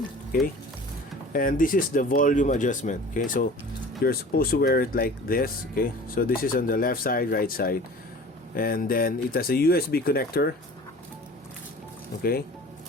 okay, and this is the volume adjustment. Okay, so you're supposed to wear it like this. Okay, so this is on the left side, right side, and then it has a USB connector. Okay,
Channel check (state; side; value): normal; both; correlation 0.43